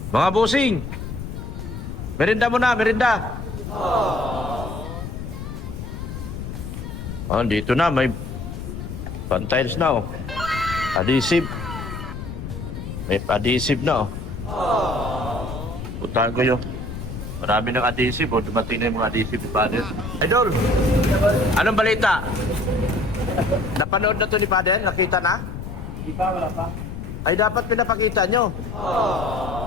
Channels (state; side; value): noise; left; rumble, 8 dB below the sound